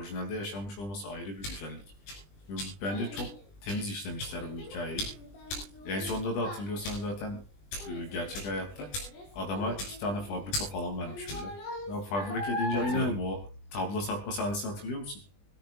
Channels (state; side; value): late; right; 20 ms